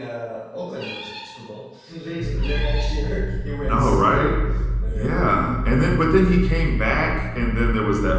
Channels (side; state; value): both; identical; correlation 1.00